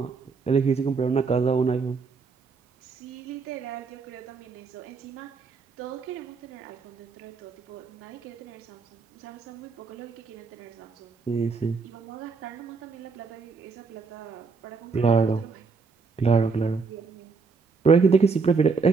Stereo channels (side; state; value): left; quieter; 4.8 dB